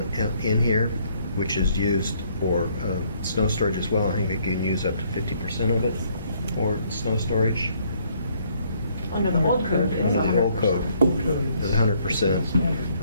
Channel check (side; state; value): both; inverted; correlation -0.67